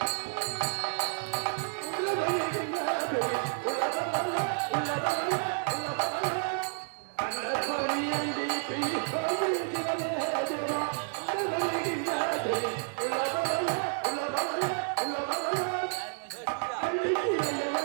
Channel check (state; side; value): silent; left; digital silence